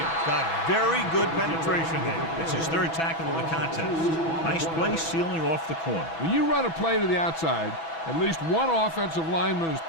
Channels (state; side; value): late; right; 6.1 ms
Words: got very good penetration there. It's his third tackle of the contest. Nice play sealing off the corner. When you run a play to the outside, at least one offensive lineman is